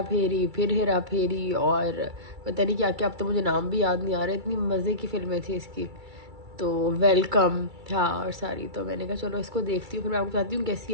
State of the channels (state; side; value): late; left; 2.3 ms